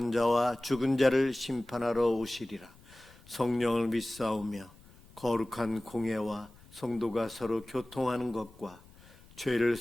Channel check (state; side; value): noise; left; rumble, 25 dB below the sound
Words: 자와 죽은 자를 심판하러 오시리라. 성령을 믿사오며 거룩한 공예와 성도가 서로 교통하는 것과 죄를